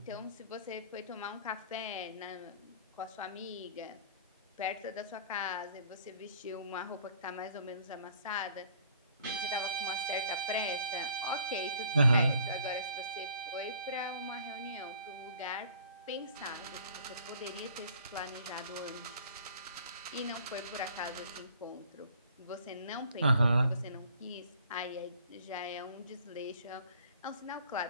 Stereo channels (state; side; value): inverted; both; correlation -0.54